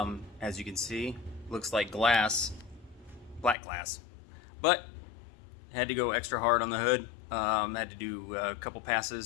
you can see, looks like glass, black glass, but had to go extra hard on the hood. Had to do a couple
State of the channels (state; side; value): drops out; right; at 3.6 s